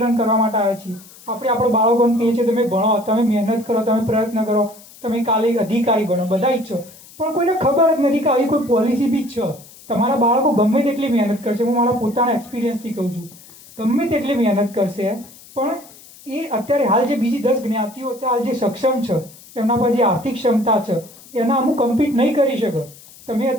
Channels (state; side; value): noise; left; hiss, 22 dB below the sound